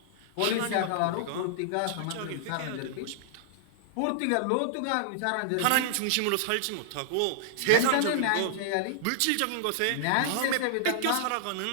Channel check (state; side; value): different; both; correlation -0.01